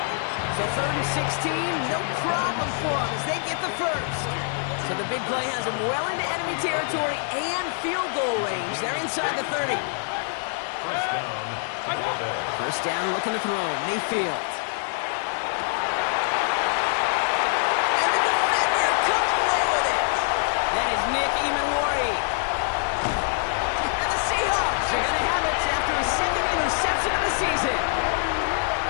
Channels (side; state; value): right; silent; 58 dB below the other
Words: So 3rd and 16, no problem for them as they get the first. So the big play has them well into enemy territory and field goal range. They're inside the 30. First down, looking to throw. Mayfield. Nick Emanwari. And the Seahawks are going to have it after his 2nd interception of the season.